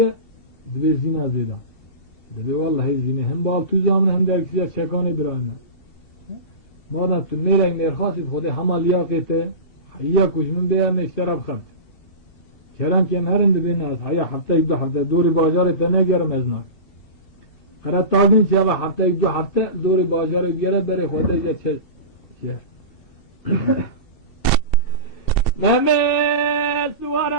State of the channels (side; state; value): right; late; 2.7 ms